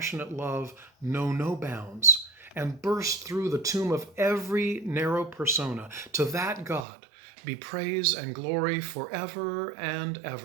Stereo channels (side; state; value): left; drops out; at 6.9 s